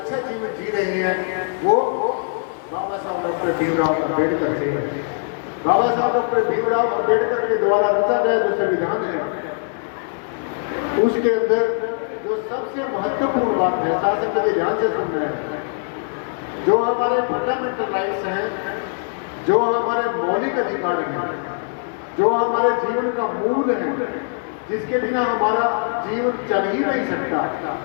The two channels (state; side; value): silent; right; 65 dB below the other